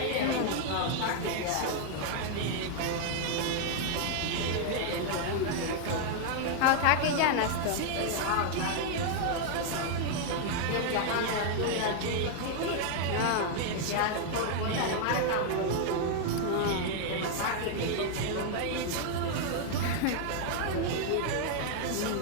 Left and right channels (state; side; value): different; both; correlation 0.00